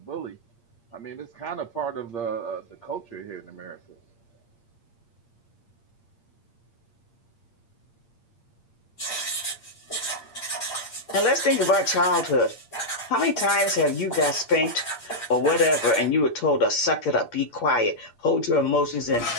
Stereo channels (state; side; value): late; right; 8.6 ms